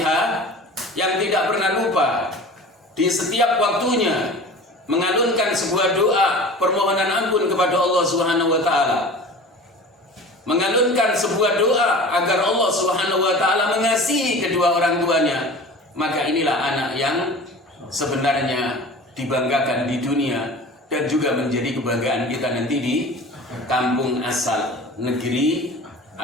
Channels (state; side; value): normal; both; correlation 0.38